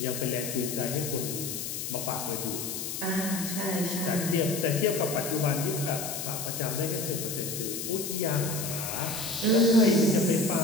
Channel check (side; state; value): left; noise; hiss, 5 dB below the sound